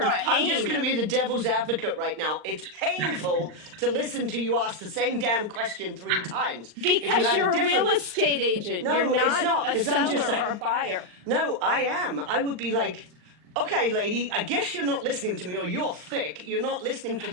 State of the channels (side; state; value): left; late; 39 ms